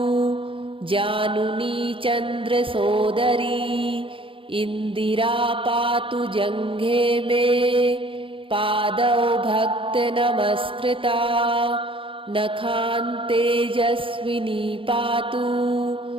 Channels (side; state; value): left; late; 0.25 ms